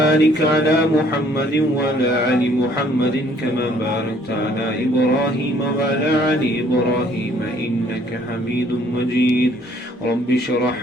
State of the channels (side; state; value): both; normal; correlation 0.60